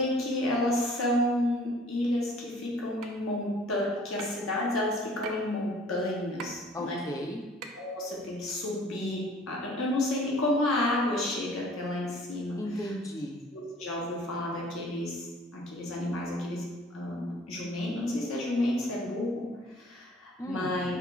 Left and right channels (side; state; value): both; normal; correlation 0.53